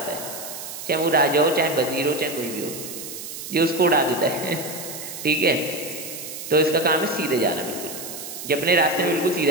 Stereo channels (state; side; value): noise; right; hiss, 9 dB below the sound